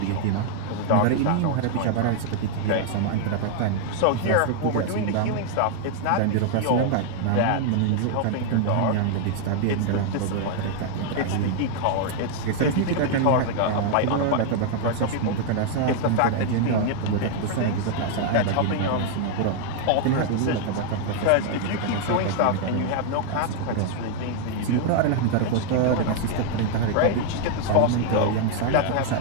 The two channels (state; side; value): different; both; correlation 0.00